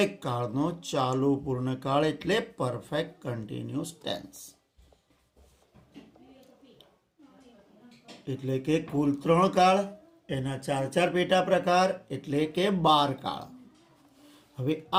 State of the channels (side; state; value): both; identical; correlation 1.00